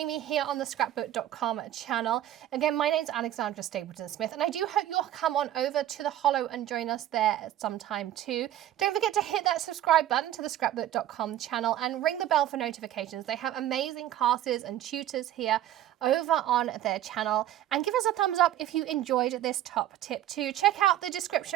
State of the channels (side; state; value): left; quieter; 12.6 dB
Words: me here on the Scrapbook.com channel. Again, my name's Alexandra Stapleton Smith, and I do hope you'll come on over to the Hollow and join us there at some time too. Don't forget to hit that subscribe button to the Scrapbook.com channel and ring the bell for notifications. They have amazing classes and tutors here over on their channel, and give us a thumbs up if you enjoyed this top tip too. Check out the